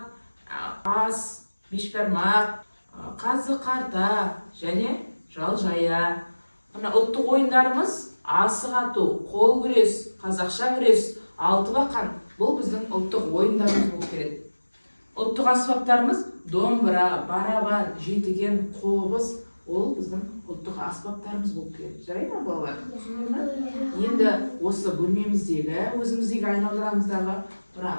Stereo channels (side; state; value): both; inverted; correlation -1.00